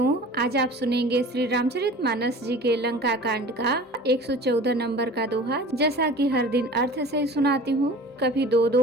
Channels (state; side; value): normal; both; correlation 0.41